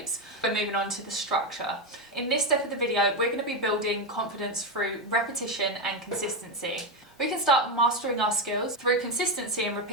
We're moving on to the structure. In this step of the video, we're going to be building confidence through repetition and consistency. We can start mastering our skills through consistency and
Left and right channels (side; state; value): both; normal; correlation 0.09